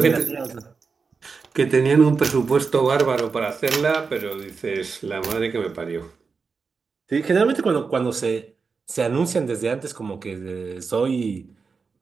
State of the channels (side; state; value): left; quieter; 5.0 dB